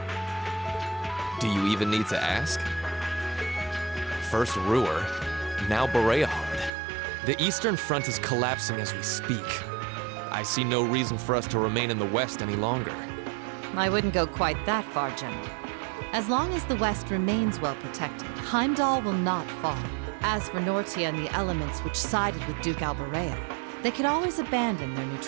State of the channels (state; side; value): drops out; left; at 6.7 s